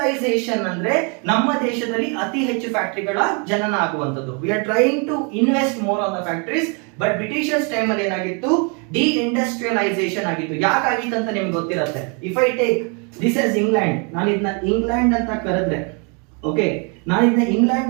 ಅಂದ್ರೆ ನಮ್ಮ ದೇಶದಲ್ಲಿ ಅತಿ ಹೆಚ್ಚು ಫ್ಯಾಕ್ಟರಿಗಳ ಜನನ ಆಗುವಂತದ್ದು. We are trying to invest more on the factories. But Britishers time ಅಲ್ಲಿ ಏನಾಗಿತ್ತು, ಡಿ ಇಂಡಸ್ಟ್ರಿಯಲೈಸೇಷನ್ ಆಗಿತ್ತು. ಯಾಕಾಗಿತ್ತು ಅಂತ ನಿಮ್ಗೆ ಗೊತ್ತಿರುತ್ತೆ. If I take this is England, ನಾನು ಇದನ್ನ ಇಂಗ್ಲೆಂಡ್ ಅಂತ ಕರೆದ್ರೆ, ಓಕೆ, ನಾನು ಇದನ್ನ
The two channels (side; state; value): left; quieter; 35.5 dB